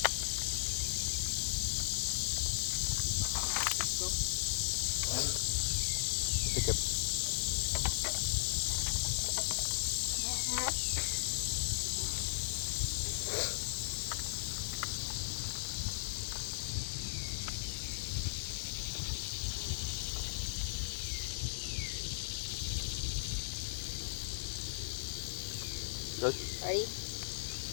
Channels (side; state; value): right; silent; digital silence